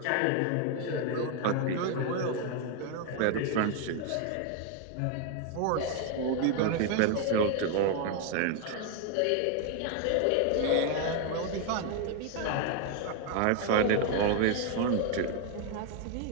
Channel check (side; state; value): both; different; correlation 0.01